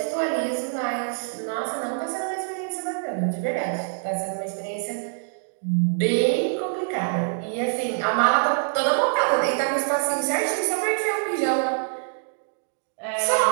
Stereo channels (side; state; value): left; silent; digital silence